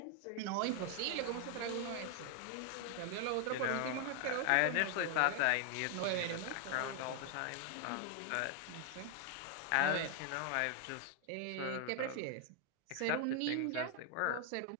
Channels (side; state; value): both; different; correlation 0.00